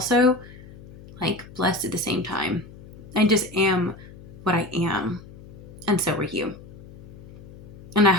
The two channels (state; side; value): noise; left; hum, 18 dB below the sound